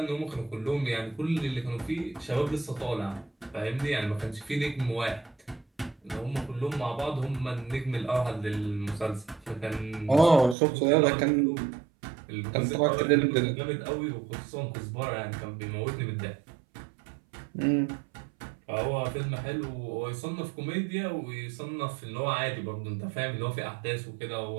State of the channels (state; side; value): drops out; left; at 10.6 s